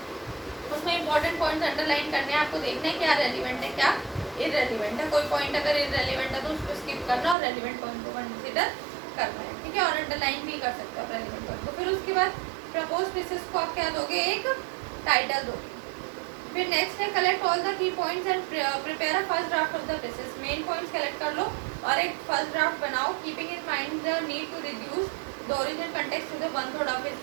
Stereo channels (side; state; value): left; drops out; at 7.4 s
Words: उसमें इंपॉर्टेंट पॉइंट्स अंडरलाइन करने हैं, आपको देखना है क्या रेलिवेंट है क्या इररेलिवेंट है। कोई पॉइंट अगर इररेलिवेंट है तो उसको स्किप करना और रेलिवेंट पॉइंट को कंसिडर करना है। ठीक है। और अंडरलाइन भी कर सकते हो रेलिवेंट पॉइंट को। फिर उसके बाद प्रपोज प्रेसेस को आप क्या दोगे, एक टाइटल दोगे। फिर नेक्स्ट है collect all the key points and prepare a first draft of the precis. Main points collect कर लो और एक फर्स्ट ड्राफ्ट बनाओ, keeping in mind the need to reduce the original context to the 1/3 of